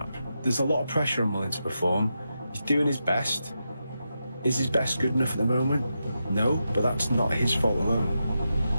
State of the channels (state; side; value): inverted; both; correlation -0.87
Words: There's a lot of pressure on Mullen to perform. He's doing his best. Is his best good enough at the moment? No, but that's not his fault alone.